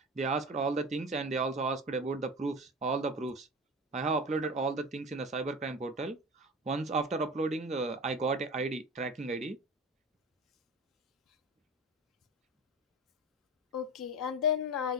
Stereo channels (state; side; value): normal; both; correlation 0.32